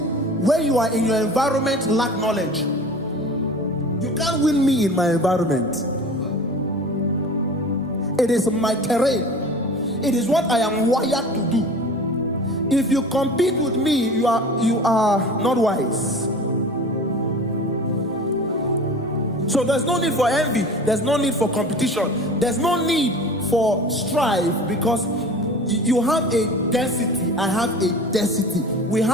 when you are in your environment lack knowledge. You can't win me in my environment. It is my terrain. It is what I am wired to do. If you compete with me, you are not wise. So there's no need for envy. There's no need for competition. There's no need for strife, because you have a density. I have a density. We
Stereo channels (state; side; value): normal; both; correlation 0.39